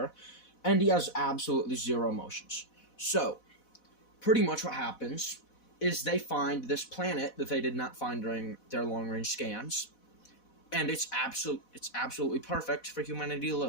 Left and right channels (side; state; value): right; late; 4.1 ms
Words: And he has absolutely zero emotions. So, pretty much what happens is they find this planet that they did not find during their long-range scans, and it's absolutely perfect for humanity to